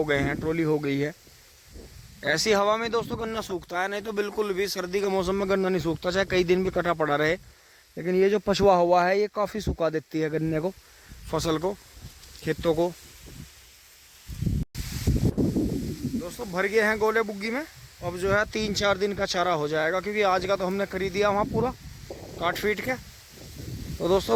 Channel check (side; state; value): both; identical; correlation 1.00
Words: गए हैं, ट्रॉली हो गई है। ऐसी हवा में दोस्तों गन्ना सूखता है, नहीं तो बिल्कुल भी सर्दी के मौसम में गन्ना नहीं सूखता, चाहे कई दिन भी कटा पड़ा रहे। लेकिन ये जो पछुआ हवा है, ये काफ़ी सुखा देती है गन्ने को, फसल को, खेतों को। दोस्तों भर गए हैं गोले बुग्गी में, अब जो है 3-4 दिन का चारा हो जाएगा, क्योंकि आज का तो हमने खरीद दिया वहाँ पूरा काट फीट के। तो